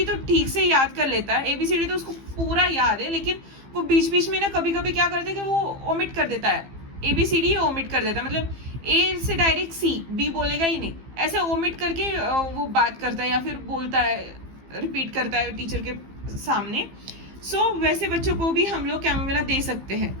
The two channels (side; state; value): left; late; 15 ms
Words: तो ठीक से याद कर लेता है, ABCD तो उसको पूरा याद है, लेकिन वो बीच बीच में ना कभी कभी क्या करता है कि वो ओमिट कर देता है, ABCD ओमिट कर देता है, मतलब A से डायरेक्ट C, B बोलेगा ही नहीं, ऐसे ओमिट करके वो बात करता है या फिर बोलता है, रिपीट करता है टीचर के सामने। सो वैसे बच्चों को भी हम लोग कैमोमिला दे सकते हैं,